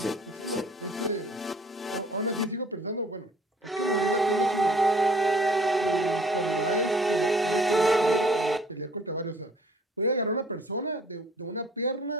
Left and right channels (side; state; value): both; normal; correlation 0.55